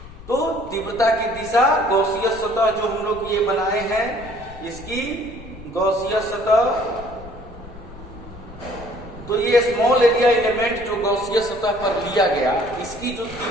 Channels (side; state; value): left; noise; rumble, 16 dB below the sound